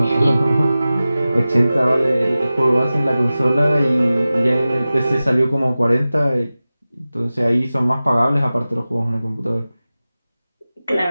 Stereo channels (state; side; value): inverted; both; correlation -0.96